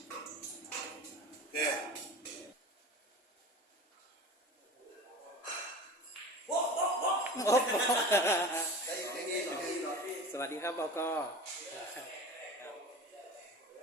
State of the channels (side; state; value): both; normal; correlation 0.35